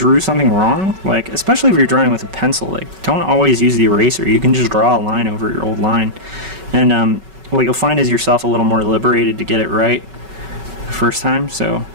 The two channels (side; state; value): left; late; 5.3 ms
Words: something wrong, like, especially if you're drawing with a pencil, like, don't always use the eraser. You can just draw a line over your old line, and what you'll find is yourself a little more liberated to get it right the first time. So